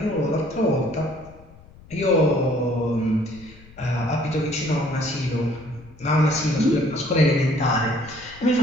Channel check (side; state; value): left; noise; rumble, 22 dB below the sound